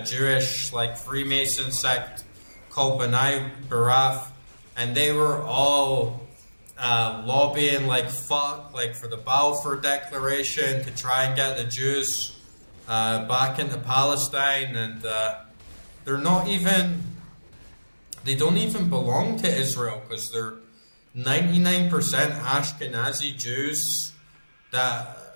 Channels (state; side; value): inverted; both; correlation -1.00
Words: Jewish like Freemason sect called B'nai B'rith, and they were all lobbying like fuck, like for the Balfour Declaration to try and get the Jews back into Palestine, and they don't even belong to Israel because they're 99% Ashkenazi Jews that